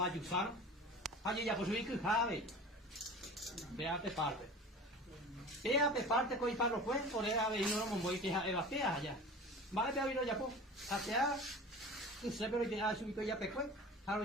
haje ya posui que jave vea pe parte pea pe parte coi parro pues por era ve no mo voy que eva pea ya va a ver ya po hacia que se pero que ha subido ya pe pues haro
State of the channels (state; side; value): normal; both; correlation 0.38